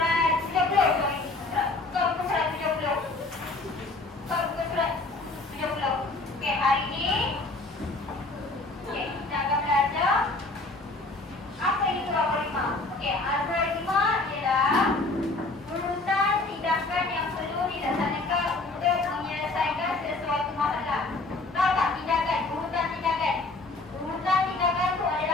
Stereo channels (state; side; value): quieter; right; 3.2 dB